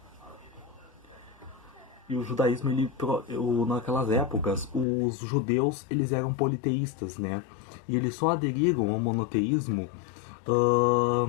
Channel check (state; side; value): drops out; right; at 4.9 s